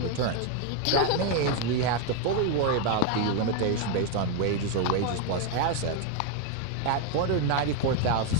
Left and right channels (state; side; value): different; both; correlation 0.01